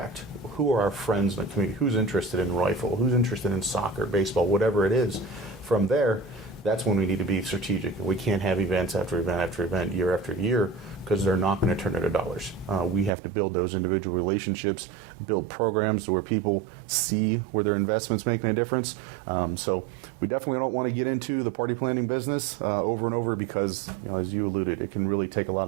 Who are our friends in the community? Who's interested in rifle? Who's interested in soccer, baseball, whatever it is? From there, that's when we need to be strategic. We can't have events after event after event, year after year, because they're not going to turn into dollars. We have to build those individual relationships, build programs where people see where their investment's making a difference. So we definitely don't want to get into the party planning business over and over, because, as you alluded, it can really take a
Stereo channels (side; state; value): left; drops out; at 13.1 s